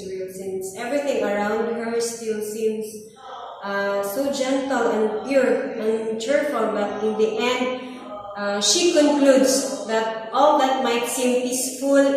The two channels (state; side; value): identical; both; correlation 1.00